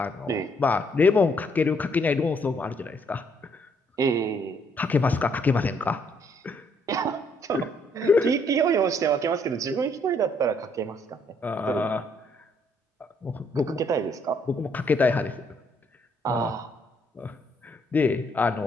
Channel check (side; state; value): both; normal; correlation 0.69